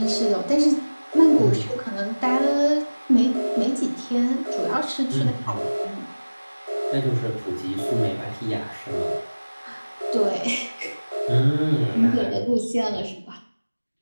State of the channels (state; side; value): inverted; both; correlation -1.00